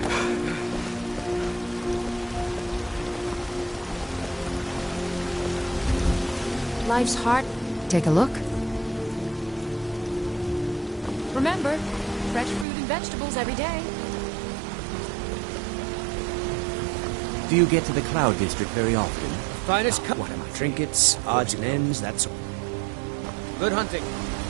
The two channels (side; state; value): left; drops out; at 12.7 s